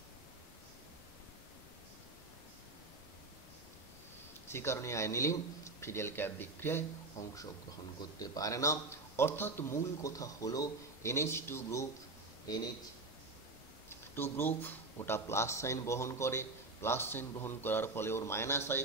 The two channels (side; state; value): left; quieter; 3.4 dB